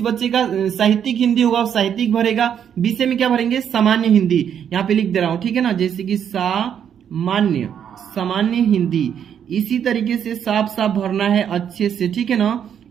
बच्चे का साहित्यिक हिंदी होगा वो साहित्यिक भरेगा, विषय में क्या भरेंगे सामान्य हिंदी, यहाँ पे लिख दे रहा हूं, ठीक है ना, जैसे कि सामान्य हिंदी। इसी तरीके से साफ साफ भरना है अच्छे से, ठीक है ना,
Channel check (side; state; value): left; quieter; 8.6 dB